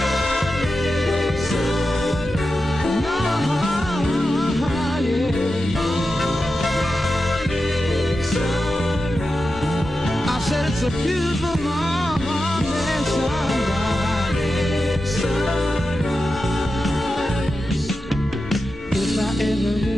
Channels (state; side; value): normal; both; correlation 0.91